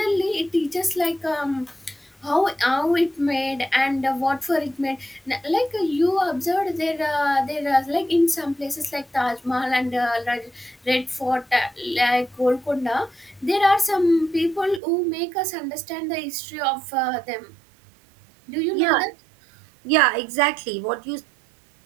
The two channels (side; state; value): left; drops out; at 14.8 s